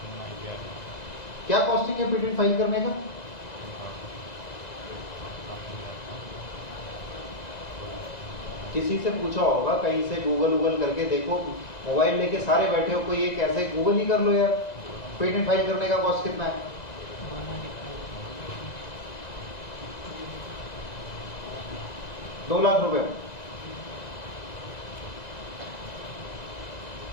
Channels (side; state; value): right; late; 2.0 ms